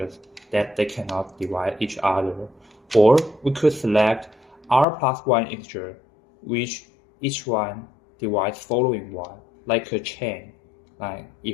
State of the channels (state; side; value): drops out; right; at 4.9 s